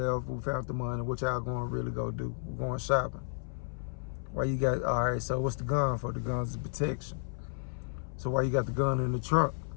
we found the money. What y'all going to really go do? We're going shopping. Why you got, all right, so what's the gun for? The gun's protection. So why you got the gun in the trunk?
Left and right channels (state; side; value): silent; right; 56 dB below the other